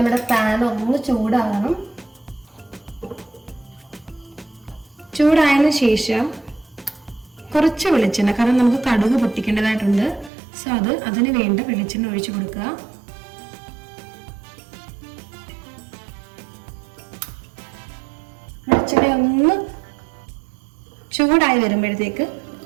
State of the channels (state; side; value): drops out; left; at 10.3 s